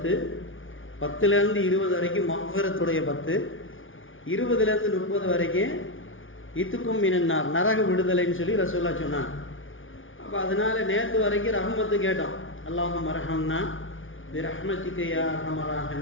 10லேருந்து 20 வரைக்கும் மஃபிரத்துடைய 10, 20லேருந்து 30 வரைக்கும் இத்துக்கும் மினன்னார் நரக விடுதலைன்னு சொல்லி ரசூலுல்லாஹ் சொன்னாங்க. அப்போ அதனால் நேற்று வரைக்கும் ரஹ்மத்து கேட்டோம். அல்லாஹும் அரஹம்னா பி ரஹ்மதிக யா அர்ஹமர்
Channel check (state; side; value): late; right; 0.57 ms